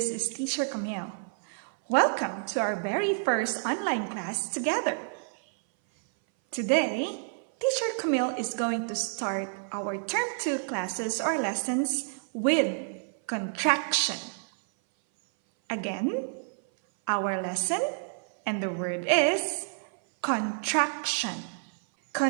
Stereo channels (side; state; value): left; silent; 57 dB below the other